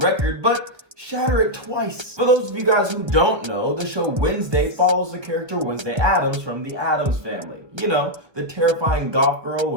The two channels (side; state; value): left; late; 1.3 ms